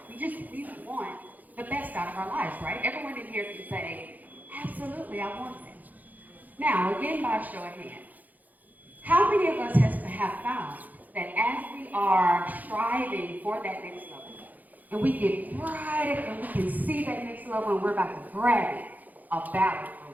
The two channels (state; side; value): late; left; 0.081 ms